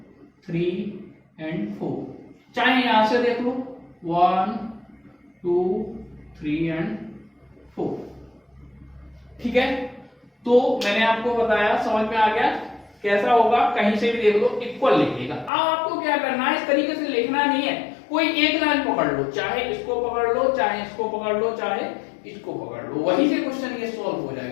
3 एंड 4, चाहे यहां से देख लो 1 2 3 एंड 4, ठीक है। तो मैंने आपको बताया, समझ में आ गया कैसा होगा, कहीं से भी देख लो इक्वल लिखिएगा। अब आपको क्या करना है, इस तरीके से लिखना नहीं है, कोई एक लाइन पकड़ लो, चाहे इसको पकड़ लो, चाहे इसको पकड़ लो, चाहे इसको पकड़ लो, वहीं से क्वेश्चन ये सॉल्व हो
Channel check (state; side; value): drops out; right; at 15.5 s